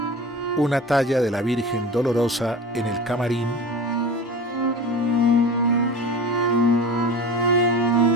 una talla de la Virgen Dolorosa en el camarín,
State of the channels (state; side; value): normal; both; correlation 0.33